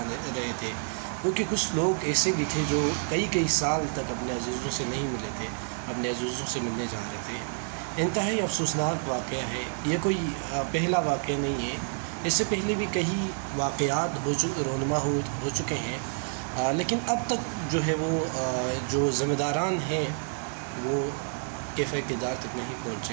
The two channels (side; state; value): left; silent; 59 dB below the other